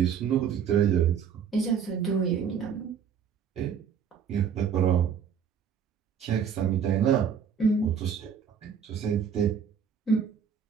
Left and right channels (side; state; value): left; quieter; 7.4 dB